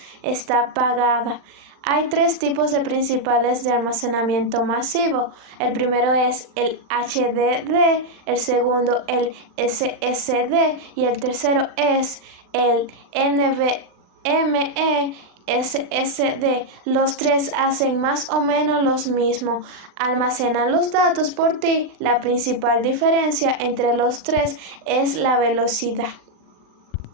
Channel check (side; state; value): left; late; 39 ms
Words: está apagada. Hay tres tipos de principales de almacenamiento masivo. El primero es el HDD, el segundo el SSD y el tercero es el NVMe SSD. Los tres hacen más o menos lo mismo, almacenan los datos por ti. La principal diferencia entre los tres es la velocidad.